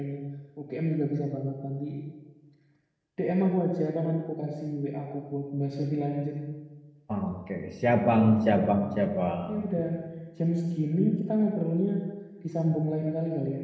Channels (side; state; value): both; identical; correlation 1.00